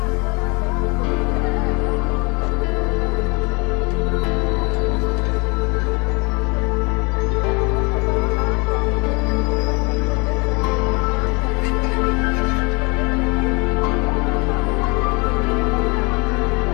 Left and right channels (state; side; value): quieter; right; 30.4 dB